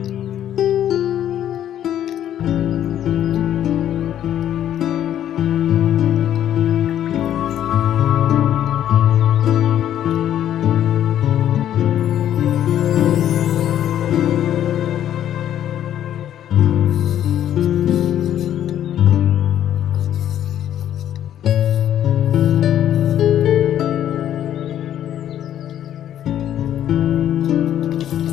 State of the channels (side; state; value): right; quieter; 11.0 dB